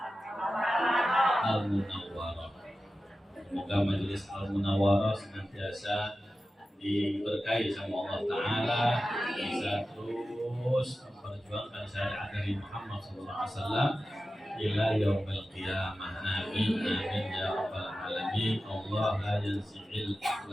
Al-Munawwarah. Semoga majelis Al-Munawwarah senantiasa diberkahi sama Allah ta'ala, bisa terus memperjuangkan syariat dari Muhammad SAW ila yaumil qiyamah. Amin amin ya rabbal alamin. Allah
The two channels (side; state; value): both; normal; correlation 0.94